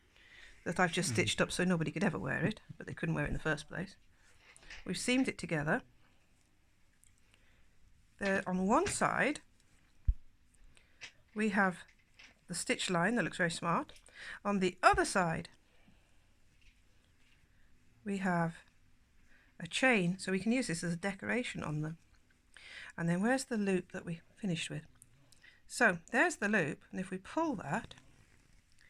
that I've just stitched up so nobody could ever wear it, but they couldn't wear it in the first place. We've seamed it together. There on one side we have the stitch line that looks very smart. On the other side we have a chain, so we can use this as a decoration on them. And then where's the loop that we finished with? So there's the loop, and if we pull that,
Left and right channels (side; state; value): both; identical; correlation 1.00